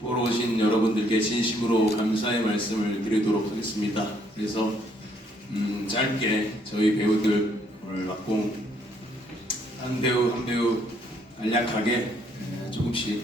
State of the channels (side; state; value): both; normal; correlation 0.68